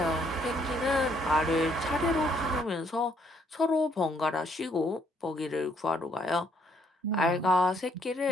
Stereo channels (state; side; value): normal; both; correlation 0.69